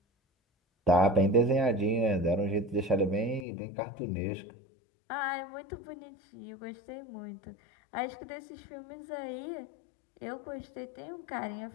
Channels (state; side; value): drops out; right; at 3.5 s